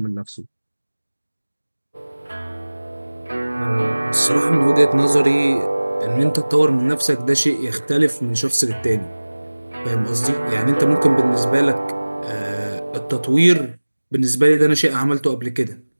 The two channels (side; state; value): both; inverted; correlation -1.00